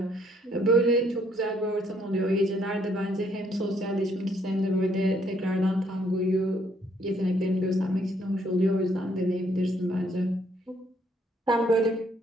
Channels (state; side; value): normal; both; correlation 0.68